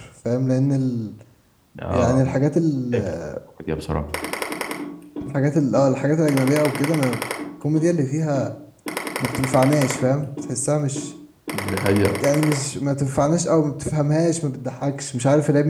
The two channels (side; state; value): both; identical; correlation 1.00